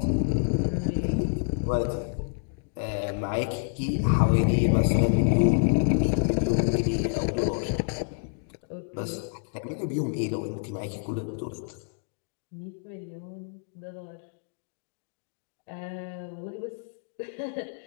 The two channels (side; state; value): right; silent; digital silence